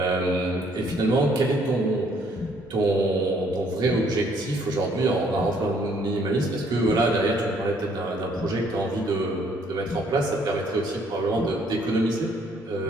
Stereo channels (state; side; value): normal; both; correlation 0.65